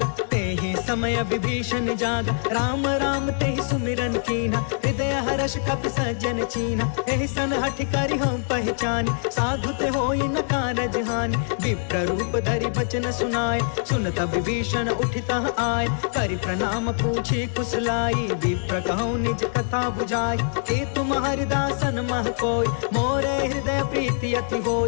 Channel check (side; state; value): right; silent; digital silence